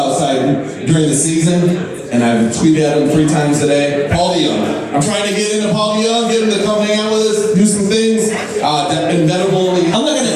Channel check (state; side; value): identical; both; correlation 1.00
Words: Side during the season, and I've tweeted at him 3 times a day. Paul DeYoung. I'm trying to get into Paul DeYoung, get him to come hang out with us, do some things. Inevitable. I'm not going to